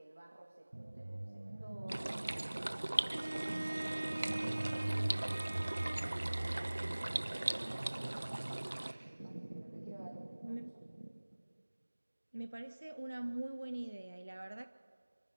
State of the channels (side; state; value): both; inverted; correlation -1.00